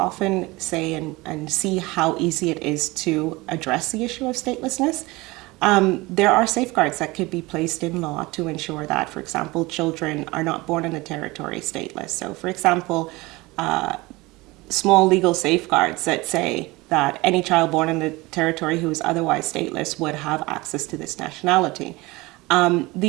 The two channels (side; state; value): left; quieter; 22.1 dB